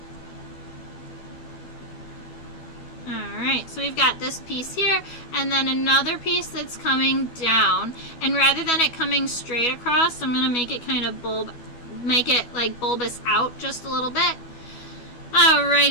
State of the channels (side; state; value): right; late; 12 ms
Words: Alright, so we've got this piece here, and then another piece that's coming down, and rather than it coming straight across, I'm going to make it kind of make it like bulbous out just a little bit.